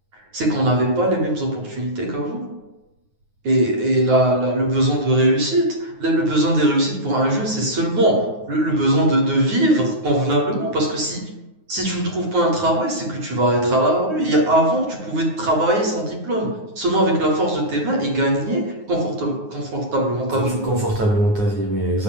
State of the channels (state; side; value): late; left; 9.5 ms